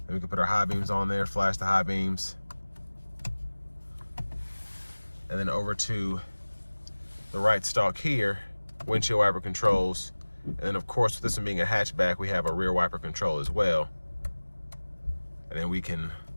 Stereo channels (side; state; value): both; inverted; correlation -1.00